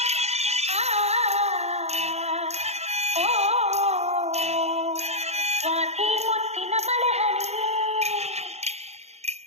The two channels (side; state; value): left; late; 0.31 ms